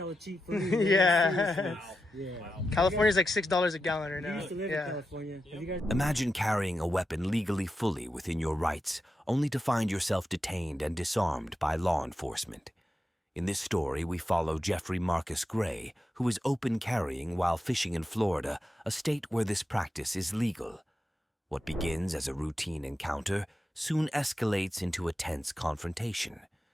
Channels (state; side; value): normal; both; correlation 0.89